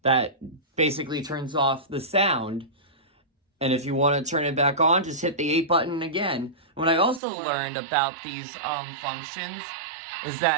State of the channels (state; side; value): drops out; left; at 7.2 s